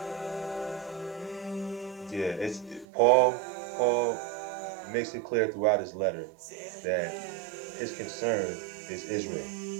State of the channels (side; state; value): left; drops out; at 2.9 s